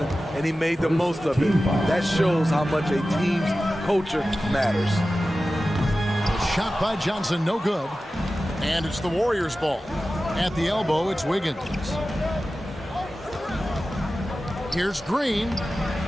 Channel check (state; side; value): normal; both; correlation 0.95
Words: and he made the most of it. That shows how much a team's culture matters. Shot by Johnson, no good. And it's the Warriors' ball. At the elbow, it's Wiggins. Here's Green.